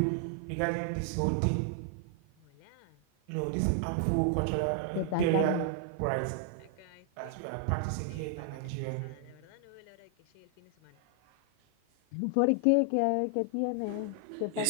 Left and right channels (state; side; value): different; both; correlation 0.00